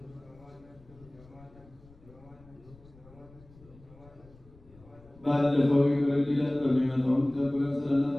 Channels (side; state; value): left; noise; rumble, 24 dB below the sound